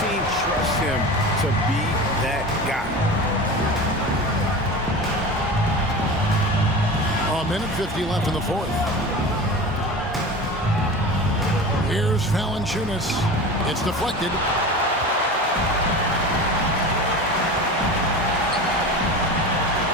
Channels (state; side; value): normal; both; correlation 0.32